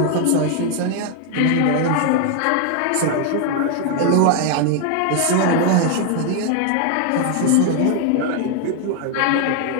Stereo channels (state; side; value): different; both; correlation 0.00